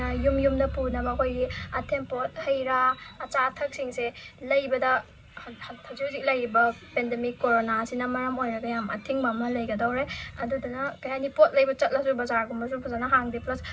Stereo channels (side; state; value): both; identical; correlation 1.00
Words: yumda punaba koi athempot haira acha athak singse laibada hajujik laiba pandemic corona sina maram oiraga yam athingba ma laigadore adudana kayani pot laiba chatlasu bazar gumba su fazana hangde plus